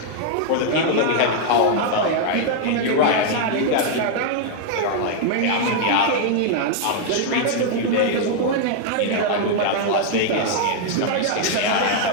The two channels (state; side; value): different; both; correlation -0.01